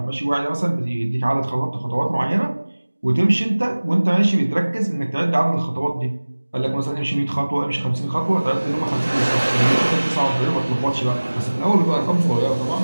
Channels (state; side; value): inverted; both; correlation -1.00